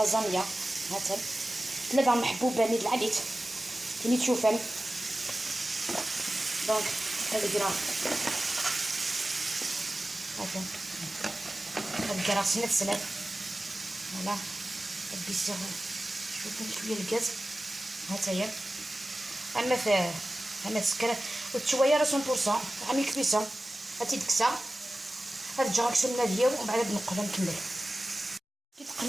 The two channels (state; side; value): normal; both; correlation 0.96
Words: هاتف ثلاثه محبوبه نيد العديد كي تشوفن. دونك هذا كرا هذا كرا سنت. فوالا بيسير شويه الغاز هاتايا. اما في انا تسكر وتشويه راه 100% عامل كبيسه هاتي دكسه. هاد الجراك سناديه ومن بعد نقلها نكمل. كي